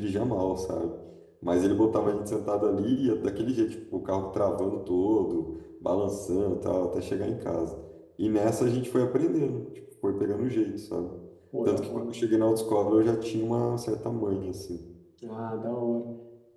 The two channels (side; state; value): both; identical; correlation 1.00